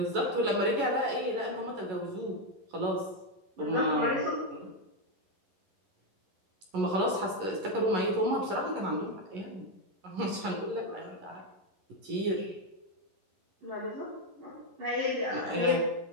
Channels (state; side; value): late; left; 11 ms